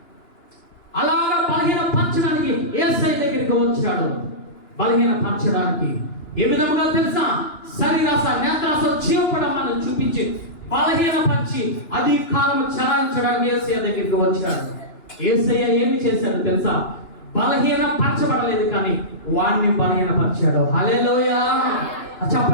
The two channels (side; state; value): right; late; 2.9 ms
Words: అలాగా బలహీనపరచడానికి యేసయ్య దగ్గరికి వచ్చాడు. బలహీనపరచడానికి ఏ విధంగా తెలుసా? శరీరాశ, నేత్రాశ, జీవపడమాలను చూపించి బలహీనపరిచి అధికారం చెలాయించడానికి యేసయ్య దగ్గరికి వచ్చాడు. యేసయ్య ఏమి చేశాడు తెలుసా? బలహీనపరచబడలేదు, కానీ వాడిని బలహీనపరిచాడు. హల్లెలూయా!